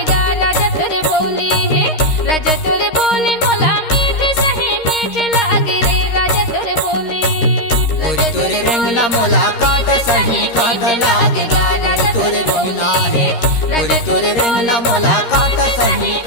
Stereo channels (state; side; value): late; right; 13 ms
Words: राजा तोर बोली है, राजा तोर बोली मोला मीठ सही मीठ लागे रे। राजा तोर बोली गोरी तोरे रंगना मोला काट सही काट लागेगा। गोरी तोरे रंगना है, गोरी तोरे रंगना मोला काट सही